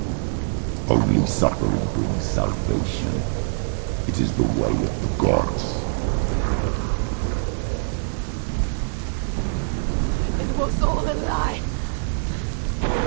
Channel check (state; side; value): silent; left; digital silence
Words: Only suffering brings salvation. It is the way of the gods. It was all a lie.